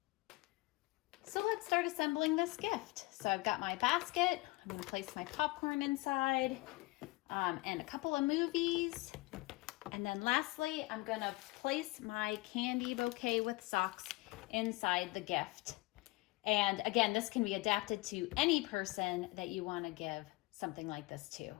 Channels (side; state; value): right; quieter; 22.6 dB